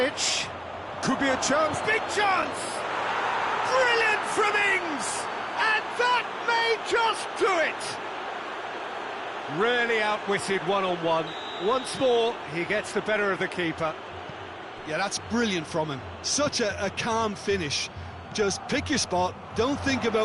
Could be a chance. Big chance! Brilliant from Ings! And that may just do it! Really outwitted one-on-one. Once more, he gets the better of the keeper. Yeah, that's brilliant from him. Such a calm finish. Just pick your spot, don't think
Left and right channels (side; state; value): both; identical; correlation 1.00